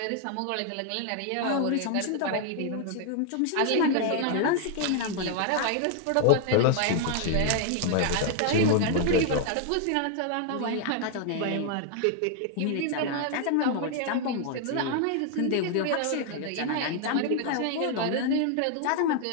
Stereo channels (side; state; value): both; different; correlation 0.00